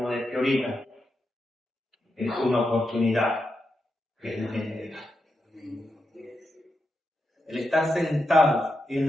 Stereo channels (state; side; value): normal; both; correlation 0.86